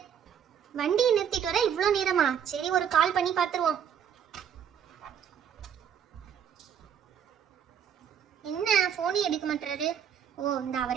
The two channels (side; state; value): left; quieter; 8.4 dB